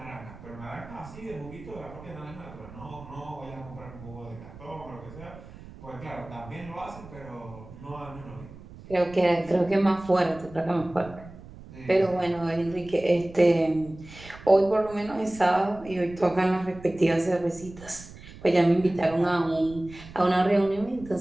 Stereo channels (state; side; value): noise; right; rumble, 17 dB below the sound